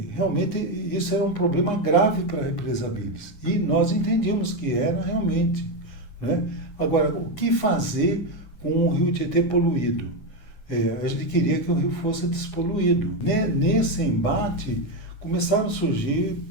realmente isso era um problema grave para a represa Billings, e nós entendíamos que era realmente, né? Agora, o que fazer com o rio Tietê poluído? A gente queria que o rio fosse despoluído. Nesse embate, começaram a surgir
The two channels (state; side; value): late; right; 9.7 ms